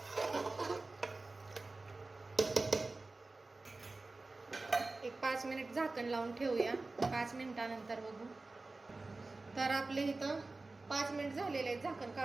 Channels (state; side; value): quieter; left; 3.4 dB